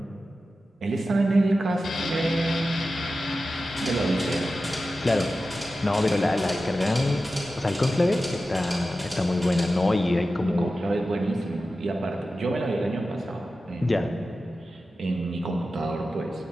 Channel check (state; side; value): normal; both; correlation 0.93